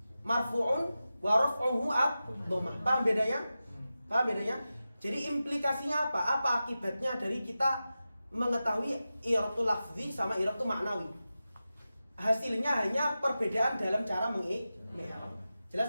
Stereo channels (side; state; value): both; inverted; correlation -0.93